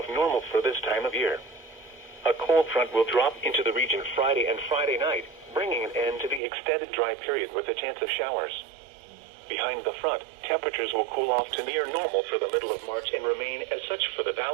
normal for this time of year. A cold front will drop into the region Friday and Friday night, bringing an end to the extended dry period with a chance of showers. Behind the front, temperatures will cool off to near normal for the middle of March and remain as such for the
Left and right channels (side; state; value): left; drops out; at 6.4 s